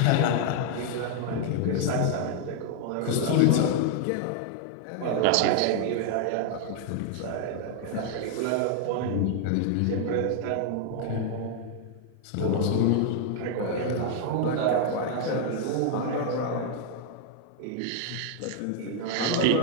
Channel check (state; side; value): different; both; correlation 0.00